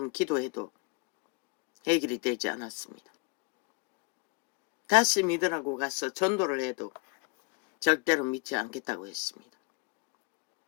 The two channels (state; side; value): quieter; right; 31.2 dB